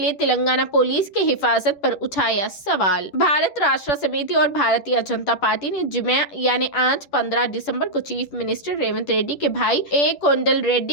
तेलंगाना पुलिस की हिफाजत पर उठाया सवाल। भारत राष्ट्र समिति और भारतीय जनता पार्टी ने जुमे यानी आज 15 दिसंबर को चीफ मिनिस्टर रेवंत रेड्डी के भाई ए कोंडल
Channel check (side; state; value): right; late; 10 ms